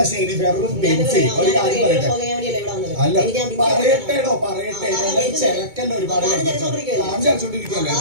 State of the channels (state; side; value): late; left; 2.2 ms